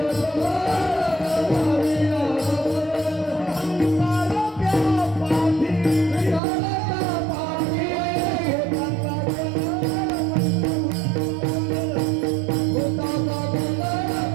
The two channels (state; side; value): drops out; left; at 6.4 s